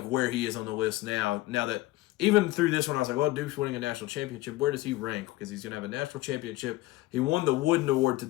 where he is on the list now. Now that even through this one, I was like, well, Duke's winning a national championship. Where does he rank? Because he's going to have a national championship. He won the Wooden Award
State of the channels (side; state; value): right; quieter; 18.1 dB